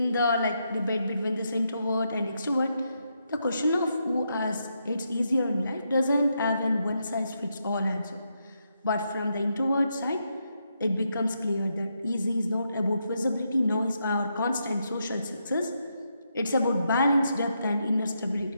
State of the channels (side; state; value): both; inverted; correlation -0.81